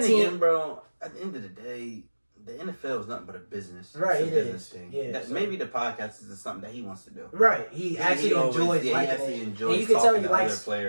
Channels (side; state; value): both; inverted; correlation -1.00